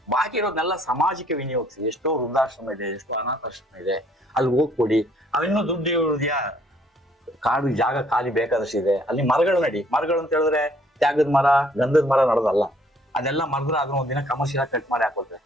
ಬಾಕಿ ಇರೋದನ್ನೆಲ್ಲ ಸಮಾಜಕ್ಕೆ ವಿನಿಯೋಗಿಸಿ. ಎಷ್ಟೋ ವೃದ್ಧಾಶ್ರಮ ಇದೆ, ಎಷ್ಟೋ ಅನಾಥಾಶ್ರಮ ಇದೆ, ಅಲ್ಲಿ ಹೋಗ್ಕೊಡಿ. ಅವಿನ್ನೂ ದುಡ್ಡು ಇರೋದ್ಯಾ, ಕಾಡು ಜಾಗ ಖಾಲಿ ಬೇಕಾದಷ್ಟು ಇದೆ, ಅಲ್ಲಿ ಮರಗಳು ನಡಿ. ಮರಗಳು ಅಂತ ಹೇಳಿದ್ರೆ ತ್ಯಾಗದ ಮರ ಗಂಧದ ಮರ ನಡೋದಲ್ಲ. ಅದೆಲ್ಲ ಮರದ್ರೆ ಅದನ್ನ ಒಂದಿನ ಕಮರ್ಷಿಯಲ್ ಕಟ್ ಮಾಡಿ ಹಾಕೋತಾರೆ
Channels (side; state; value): both; normal; correlation 0.63